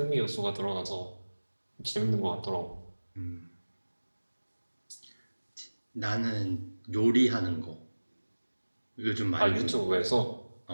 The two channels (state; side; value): inverted; both; correlation -1.00